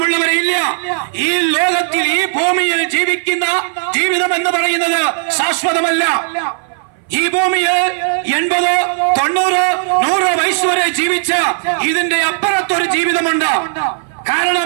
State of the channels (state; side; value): silent; left; 61 dB below the other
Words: ഇല്ല. ഈ ലോകത്തിൽ, ഈ ഭൂമിയിൽ ജീവിക്കുന്ന ജീവിതം എന്ന് പറയുന്നത് ശാശ്വതമല്ല. ഈ ഭൂമിയിൽ 80, 90, 100 വയസ്സ് വരെ ജീവിച്ച ഇതിന്റെ അപ്പുറത്തൊരു ജീവിതമുണ്ട്. കാരണം